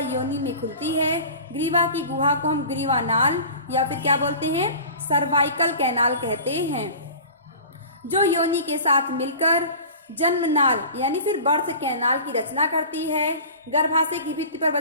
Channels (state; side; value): inverted; both; correlation -0.39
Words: योनि में खुलती है। ग्रीवा की गुहा को हम ग्रीवा नाल या फिर क्या बोलते हैं? सर्वाइकल कैनाल कहते हैं, जो योनि के साथ मिलकर जन्म नाल यानी फिर बर्थ कैनाल की रचना करती है। गर्भाशय की भित्ति पर